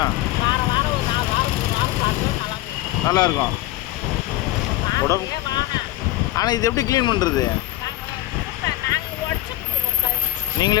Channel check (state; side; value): quieter; right; 16.2 dB